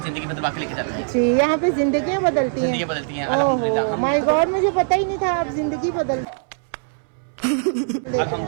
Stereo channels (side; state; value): left; silent; 63 dB below the other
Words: जिंदगी बदलवा के लेकर जाते हैं। जी, यहाँ पे जिंदगियाँ बदलती हैं अल्हम्दुलिल्लाह। माय गॉड, मुझे पता ही नहीं था आप जिंदगी बदल